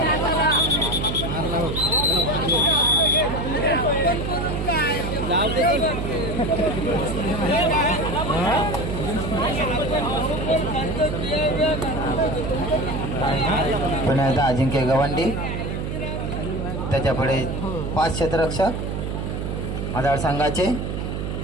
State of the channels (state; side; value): noise; right; hum, 3 dB below the sound